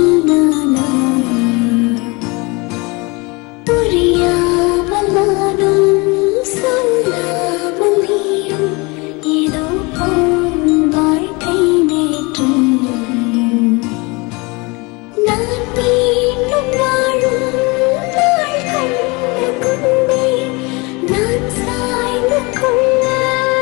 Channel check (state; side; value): quieter; right; 26.7 dB